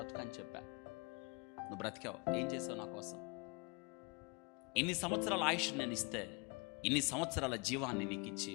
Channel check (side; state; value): right; quieter; 30.5 dB